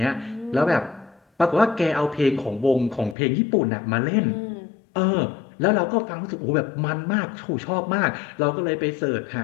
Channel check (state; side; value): drops out; right; at 3.2 s